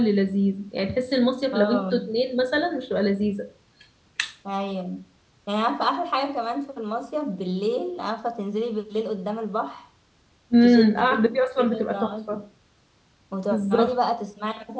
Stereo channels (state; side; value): identical; both; correlation 1.00